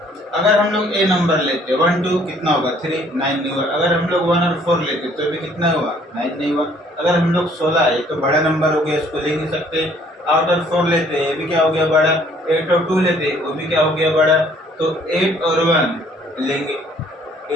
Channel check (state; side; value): normal; both; correlation 0.60